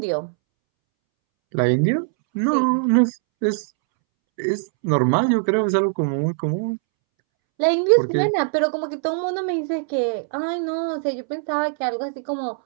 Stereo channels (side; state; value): left; silent; 64 dB below the other